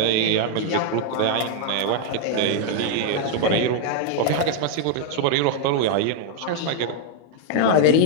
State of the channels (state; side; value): different; both; correlation 0.00